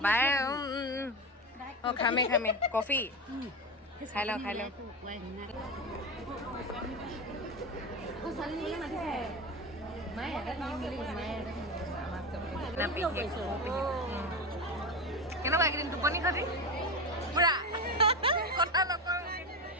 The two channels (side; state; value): both; normal; correlation 0.20